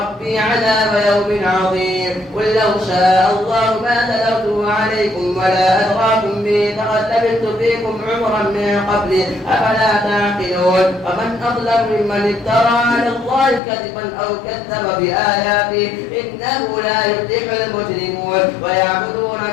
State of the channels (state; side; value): drops out; right; at 13.6 s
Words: عذاب يوم عظيم. قل لو شاء الله ما تلوته عليكم ولا أدراكم به لقد لبثت فيكم عمرا من قبل أفلا تعقلون. ومن أظلم ممن افترى على الله كذبا أو كذب بآياته إنه لا يفلح المجرمون. ويعبدون